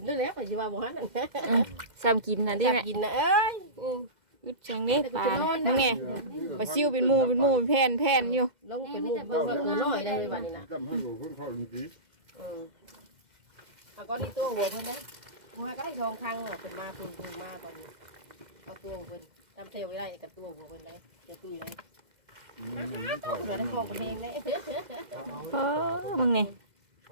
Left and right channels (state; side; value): late; left; 2.1 ms